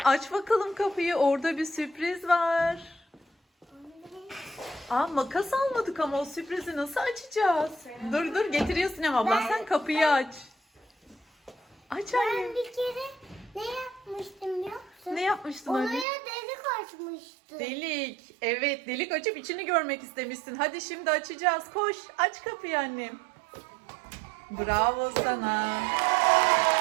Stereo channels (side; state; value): left; drops out; at 16.1 s